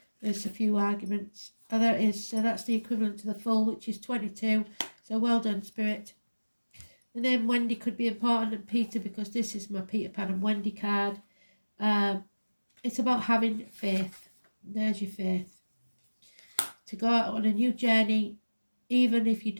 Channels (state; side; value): inverted; both; correlation -1.00